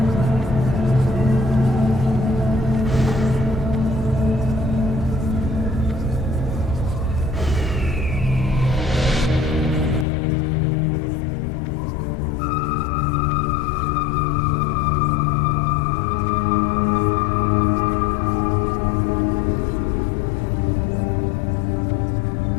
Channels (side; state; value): right; drops out; at 10.1 s